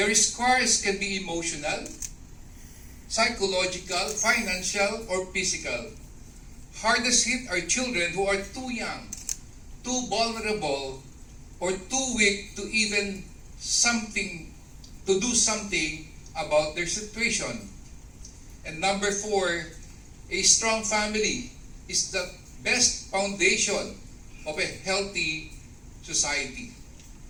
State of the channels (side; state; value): both; identical; correlation 1.00